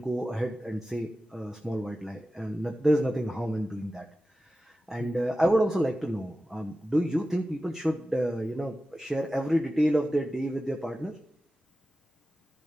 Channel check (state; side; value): normal; both; correlation 0.94